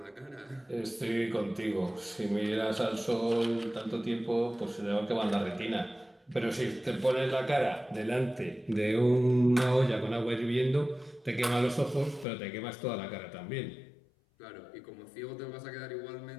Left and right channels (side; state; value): right; drops out; at 12.2 s